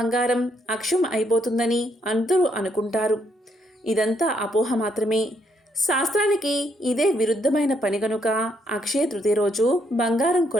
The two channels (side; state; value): both; normal; correlation 0.73